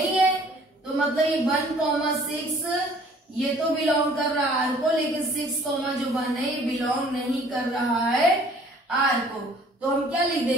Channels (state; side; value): normal; both; correlation 0.55